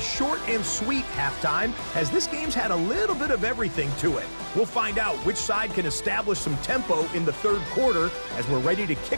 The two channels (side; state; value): both; inverted; correlation -1.00